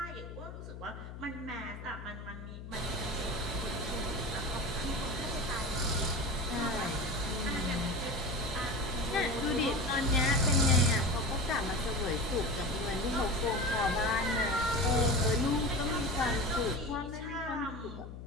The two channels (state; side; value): noise; left; hum, 11 dB below the sound